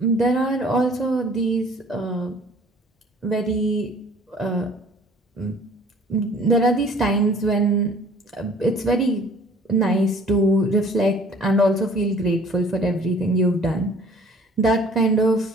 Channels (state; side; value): normal; both; correlation 0.52